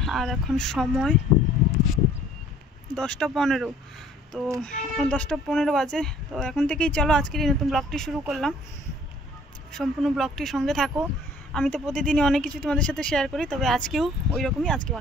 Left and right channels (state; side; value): normal; both; correlation 0.56